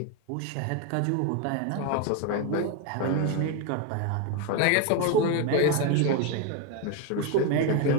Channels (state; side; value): different; both; correlation 0.02